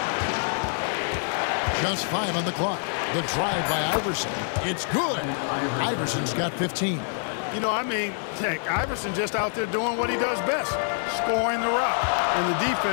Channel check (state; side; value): silent; right; 61 dB below the other